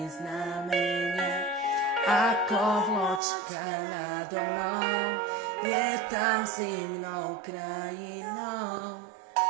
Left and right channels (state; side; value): drops out; left; at 3.2 s